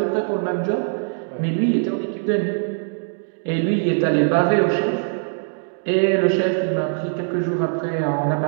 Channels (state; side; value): silent; left; digital silence